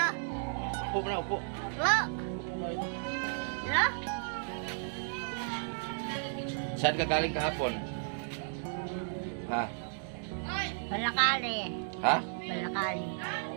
Upo na, upo. Hello? Hello? Saan ka galing kahapon? Ha? Palakali. Ha? Palakali.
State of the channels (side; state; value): left; silent; digital silence